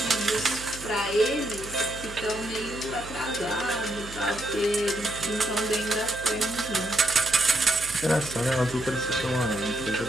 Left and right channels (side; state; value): right; noise; hum, 15 dB below the sound